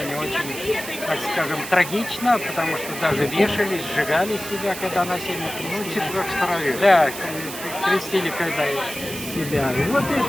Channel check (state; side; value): noise; right; hiss, 10 dB below the sound